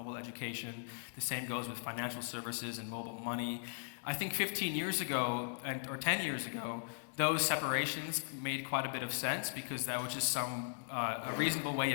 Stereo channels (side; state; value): right; silent; digital silence